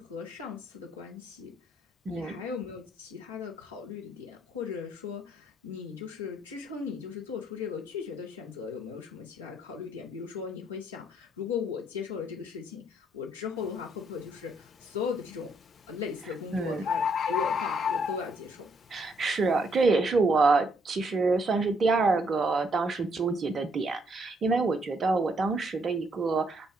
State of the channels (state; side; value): normal; both; correlation 0.71